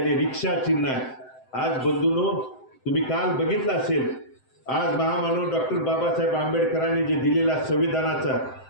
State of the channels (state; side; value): late; right; 7.8 ms